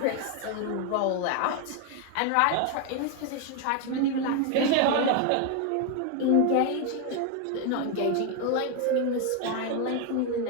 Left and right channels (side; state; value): both; different; correlation 0.01